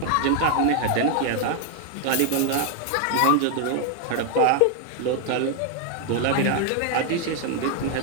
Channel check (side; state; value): both; different; correlation 0.00